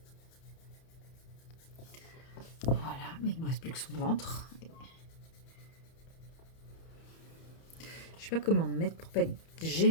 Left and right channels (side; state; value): right; late; 31 ms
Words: Voilà, mais il me reste plus que son ventre. Je sais pas comment me mettre pour pas être